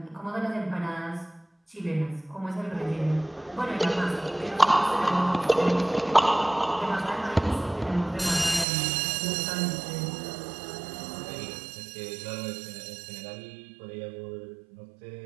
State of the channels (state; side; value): drops out; left; at 8.7 s